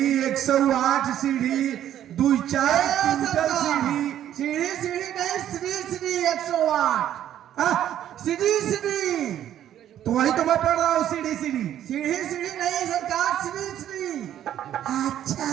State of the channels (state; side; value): quieter; left; 11.2 dB